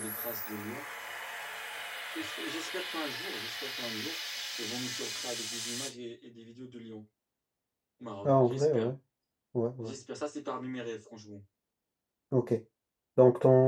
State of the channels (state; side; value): identical; both; correlation 1.00